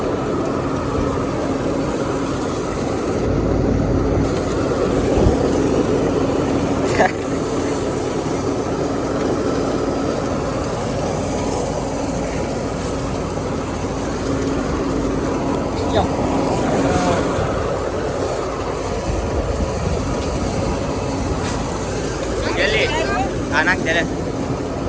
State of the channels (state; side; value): identical; both; correlation 1.00